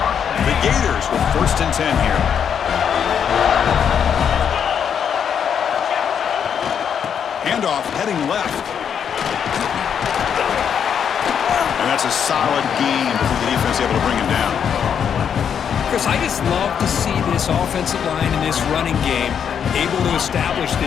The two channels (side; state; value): right; quieter; 7.9 dB